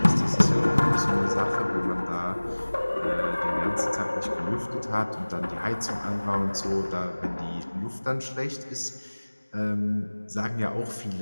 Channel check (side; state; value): both; inverted; correlation -1.00